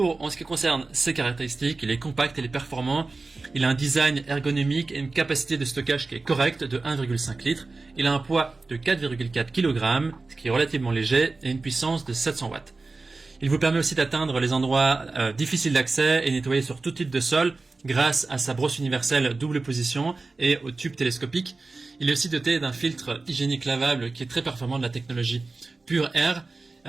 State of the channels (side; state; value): left; quieter; 3.7 dB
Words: ce qui concerne ses caractéristiques, il est compact et il est performant. Il a un design ergonomique et une capacité de stockage qui est correcte de 1,5 litres. Il a un poids de 4,4 kg, ce qui est relativement léger, et une puissance de 700 watts. Il vous permet aussi d'atteindre les endroits difficiles d'accès et nettoyer sur tout type de sol grâce à sa brosse universelle double position et au tube télescopique. Il est aussi doté d'un filtre hygiénique lavable qui est très performant de la technologie Pure Air.